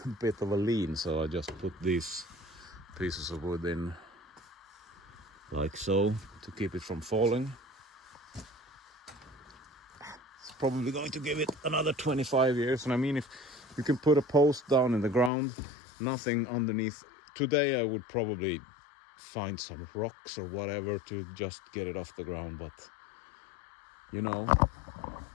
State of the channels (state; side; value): drops out; right; at 15.3 s